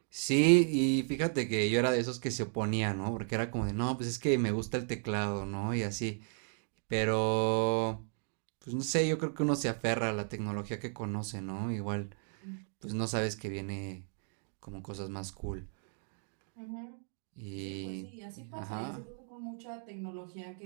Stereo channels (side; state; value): left; silent; 55 dB below the other